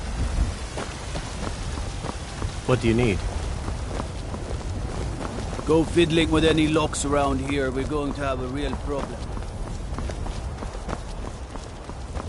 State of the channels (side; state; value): both; identical; correlation 1.00